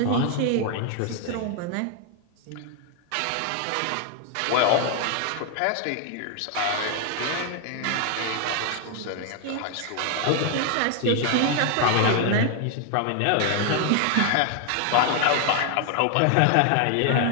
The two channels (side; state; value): both; different; correlation 0.00